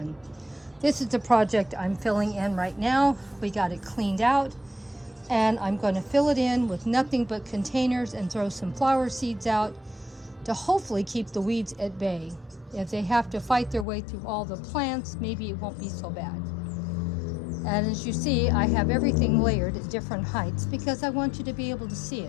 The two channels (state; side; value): drops out; right; at 13.9 s